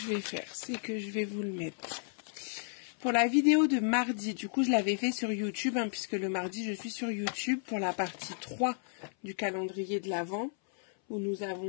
vais faire, c'est que je vais vous le mettre. Pour la vidéo de mardi, du coup je l'avais fait sur YouTube, hein, puisque le mardi je suis sur YouTube pour la partie 3 du calendrier de l'Avent, où nous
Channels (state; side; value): silent; right; 56 dB below the other